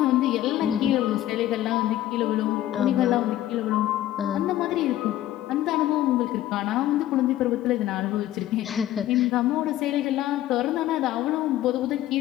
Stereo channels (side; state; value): right; quieter; 13.7 dB